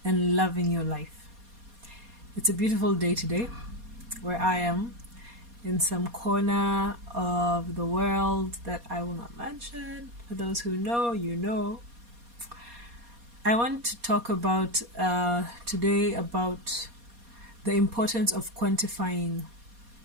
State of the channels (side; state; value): left; late; 4.2 ms